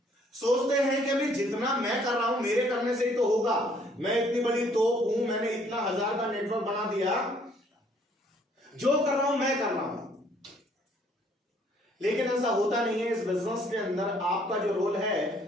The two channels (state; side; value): normal; both; correlation 0.63